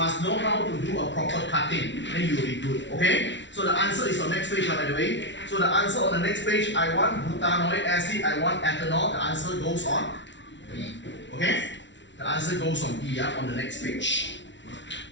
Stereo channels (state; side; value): late; right; 0.53 ms